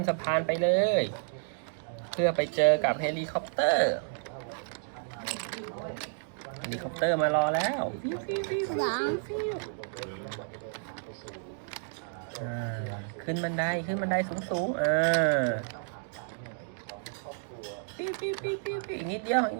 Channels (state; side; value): silent; left; digital silence